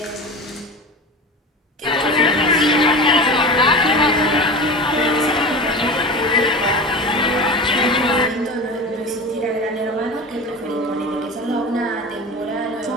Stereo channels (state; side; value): normal; both; correlation 0.31